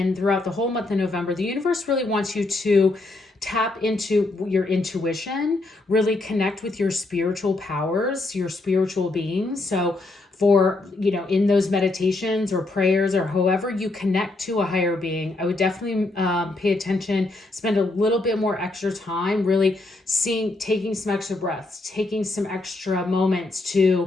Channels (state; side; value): quieter; right; 3.0 dB